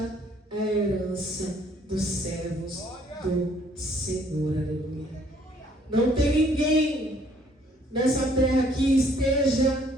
é a herança dos servos do Senhor. Aleluia. Não tem ninguém nessa terra que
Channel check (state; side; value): normal; both; correlation 0.62